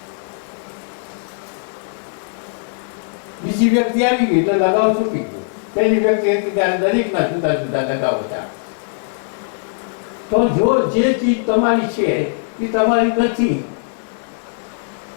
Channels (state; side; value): silent; right; digital silence